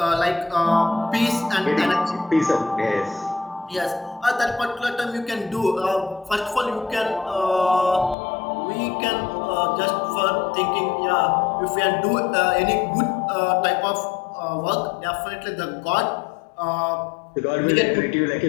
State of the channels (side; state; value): right; drops out; at 8.2 s